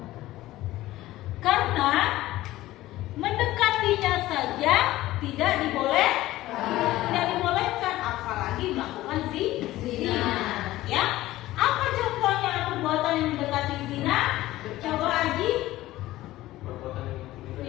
Karena mendekatinya saja tidak dibolehkan, apalagi melakukan zina. Ya, apa contohnya perbuatan yang mendekati zina? Coba Aji.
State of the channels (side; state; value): right; quieter; 16.3 dB